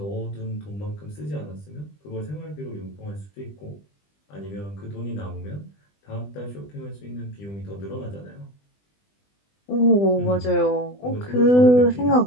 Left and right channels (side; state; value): right; late; 20 ms